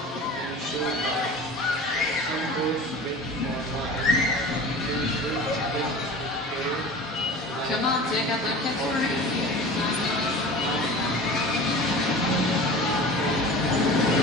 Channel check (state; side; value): normal; both; correlation 0.37